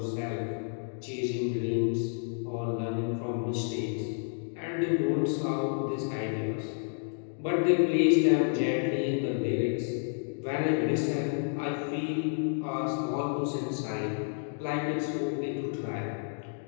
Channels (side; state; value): right; silent; digital silence